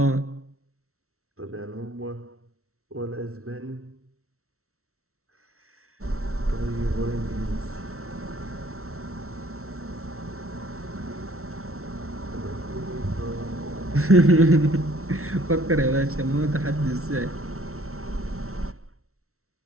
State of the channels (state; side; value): late; left; 0.63 ms